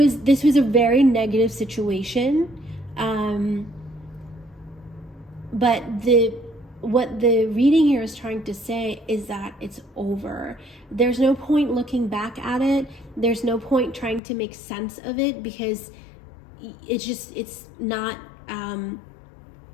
was a very negative situation, but what the reading here is trying to say is that it's over. There's no point looking back at it. There's no point trying to make sense of it, because it's not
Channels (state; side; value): drops out; right; at 14.2 s